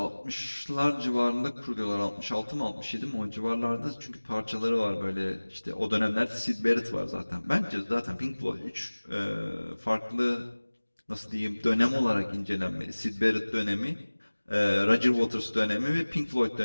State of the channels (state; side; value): inverted; both; correlation -1.00